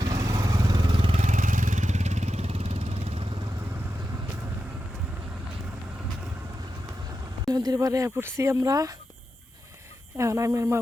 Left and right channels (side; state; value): both; normal; correlation 0.89